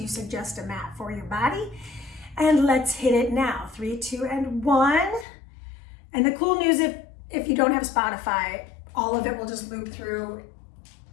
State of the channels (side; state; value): right; drops out; at 5.2 s